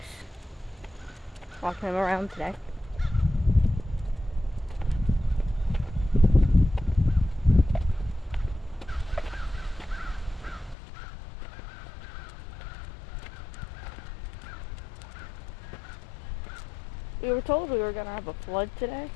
Walking him around today. We were told we were gonna have a flood today,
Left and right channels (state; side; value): drops out; right; at 10.8 s